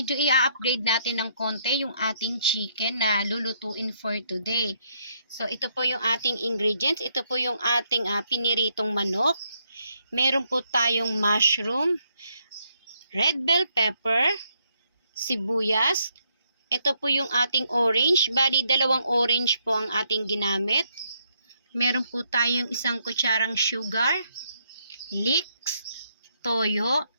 i-upgrade natin ng konti yung ating chicken na lulutuin for today. So, ito po yung ating ingredients. Ito po yung ating piniritong manok. Meron po tayong mushroom, red bell pepper, sibuyas. Ito po yung ating orange. Bali, 2 orange po ang ating ginamit. Meron po tayong 1 kutsarang sugar, leeks, toyo,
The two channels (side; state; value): both; inverted; correlation -0.74